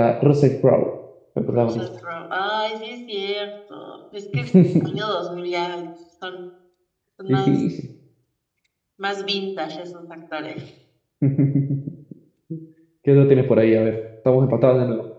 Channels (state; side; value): identical; both; correlation 1.00